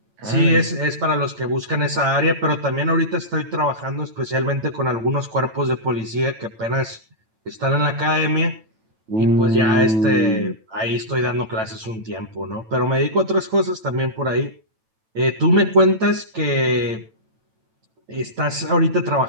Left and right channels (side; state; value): left; late; 9.0 ms